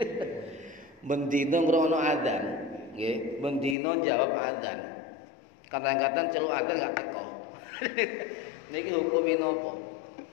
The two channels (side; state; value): right; drops out; at 3.8 s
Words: Mendina ngrungokno adzan, nggih, mendina jawab adzan. Kadang-kadang celuk adzan gak teko. Niki hukume napa?